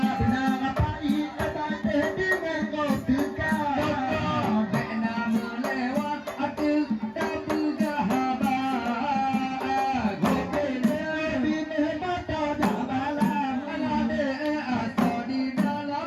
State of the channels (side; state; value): both; identical; correlation 1.00